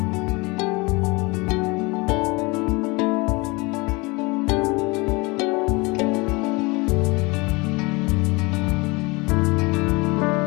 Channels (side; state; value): right; quieter; 25.4 dB